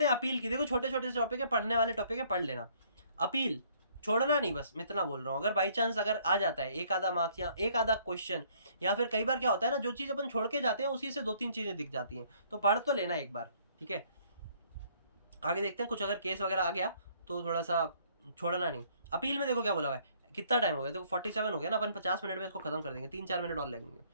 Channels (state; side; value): inverted; both; correlation -0.62